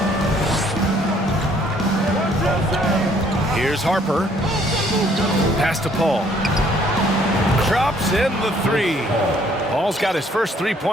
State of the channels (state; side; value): normal; both; correlation 0.63